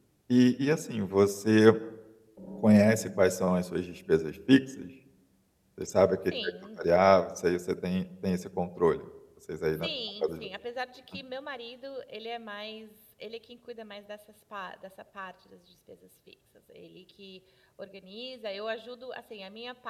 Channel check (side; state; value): both; identical; correlation 1.00